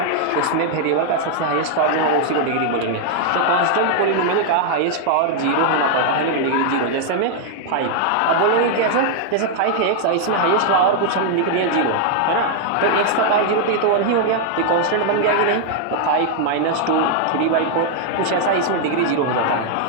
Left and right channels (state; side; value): different; both; correlation 0.00